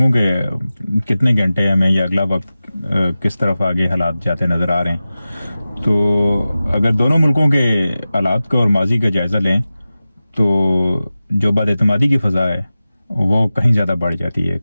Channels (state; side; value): inverted; both; correlation -0.95